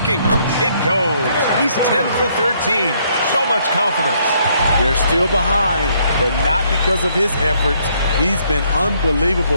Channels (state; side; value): inverted; both; correlation -0.69